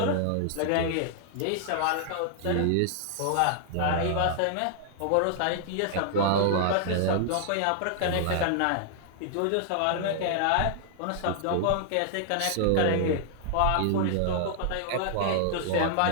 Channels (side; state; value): both; different; correlation -0.01